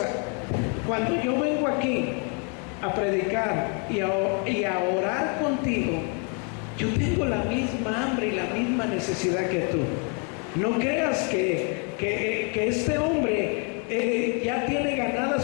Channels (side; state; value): right; quieter; 37.8 dB